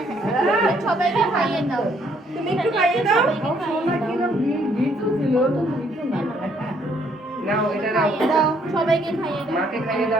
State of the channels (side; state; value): both; normal; correlation 0.67